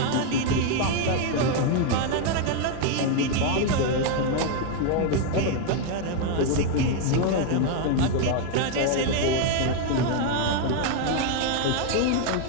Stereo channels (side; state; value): both; different; correlation 0.01